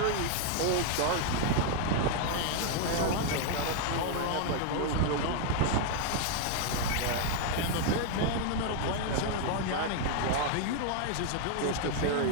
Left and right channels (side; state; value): both; different; correlation 0.00